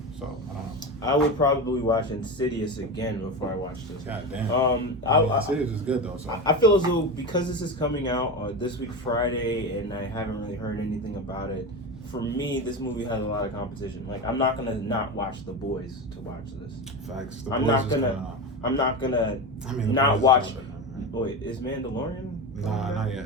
So I don't know. I would probably watch Insidious again before I watch this. God damn. Insidious is good though. So I feel as though because this is coming out this week Friday, and I haven't really heard anything about it. For me, this movie has a lot of competition. Like I'm not gonna not watch The Boys to watch this. Facts. I'm not gonna not watch. Wait, is Mandalorian? Nah, not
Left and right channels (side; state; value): both; normal; correlation 0.22